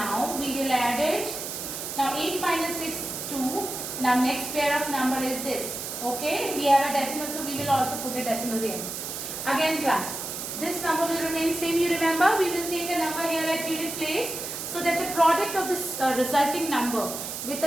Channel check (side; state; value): right; noise; hiss, 6 dB below the sound